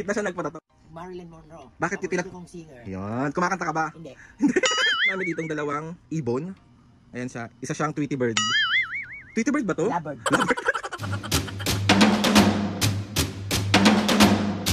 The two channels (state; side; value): identical; both; correlation 1.00